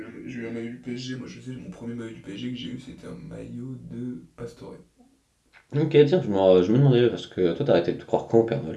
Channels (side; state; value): both; identical; correlation 1.00